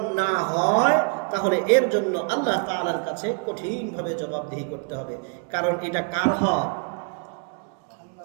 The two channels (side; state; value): left; quieter; 38.5 dB